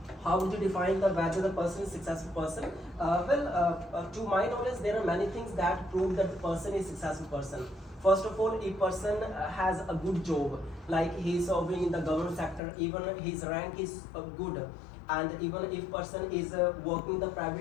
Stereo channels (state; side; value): drops out; right; at 12.6 s